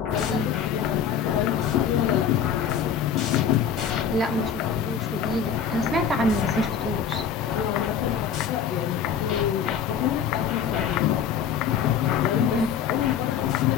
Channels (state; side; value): quieter; right; 7.5 dB